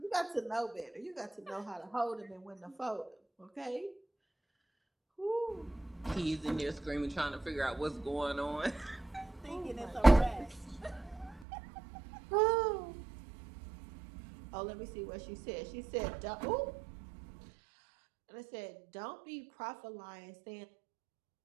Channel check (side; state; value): left; drops out; at 11.5 s